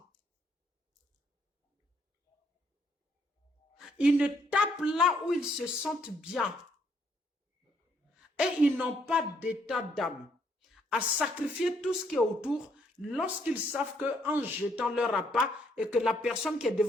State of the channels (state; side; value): normal; both; correlation 0.70